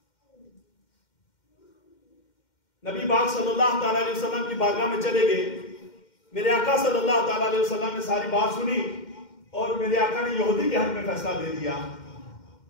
نبی پاک صلی اللہ تعالیٰ علیہ وسلم کی بارگاہ میں چلے گئے، میرے آقا صلی اللہ تعالیٰ علیہ وسلم نے ساری بات سنی اور میرے آقا نے یہودی کے حق میں فیصلہ دے دیا۔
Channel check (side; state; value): right; late; 2.1 ms